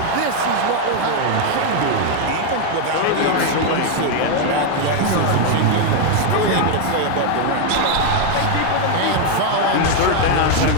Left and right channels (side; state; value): both; different; correlation 0.01